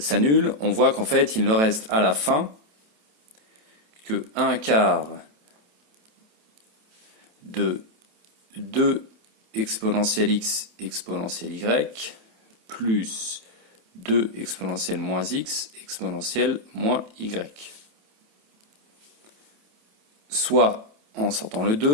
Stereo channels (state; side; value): late; left; 27 ms